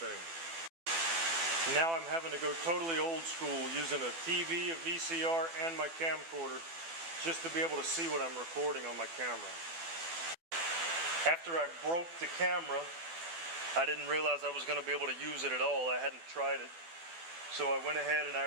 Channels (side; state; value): left; late; 12 ms